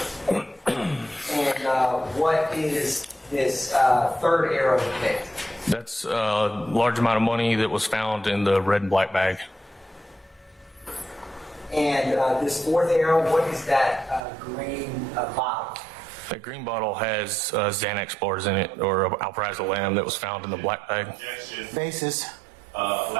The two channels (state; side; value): drops out; left; at 14.2 s